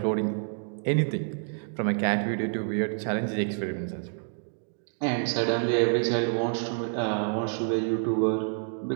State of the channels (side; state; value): left; silent; digital silence